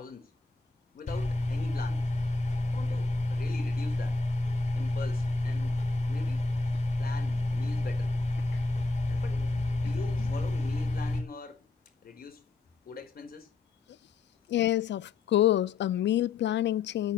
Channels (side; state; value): right; quieter; 3.8 dB